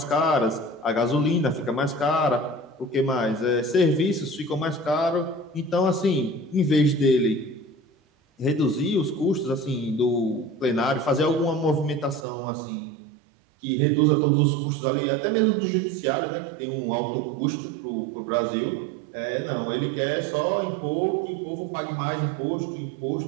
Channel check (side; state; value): left; drops out; at 12.2 s